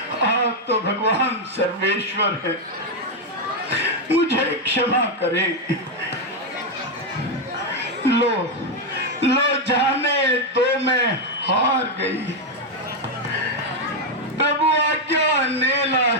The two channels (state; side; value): normal; both; correlation 0.03